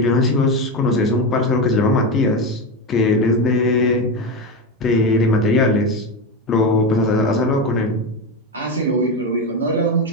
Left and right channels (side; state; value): both; normal; correlation 0.16